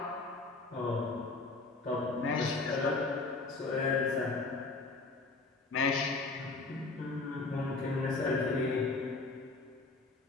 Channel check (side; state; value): right; quieter; 3.6 dB